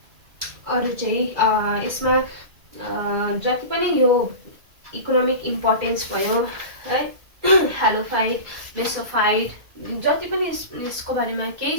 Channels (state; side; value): late; left; 2.4 ms